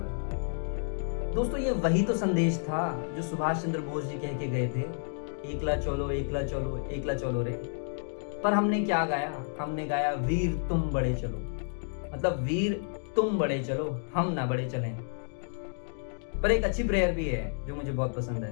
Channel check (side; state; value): right; silent; digital silence